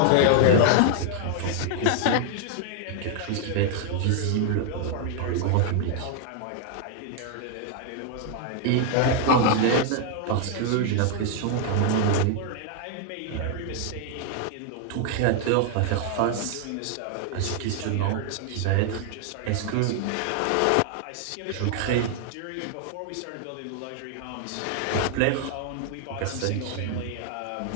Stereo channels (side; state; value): both; different; correlation 0.00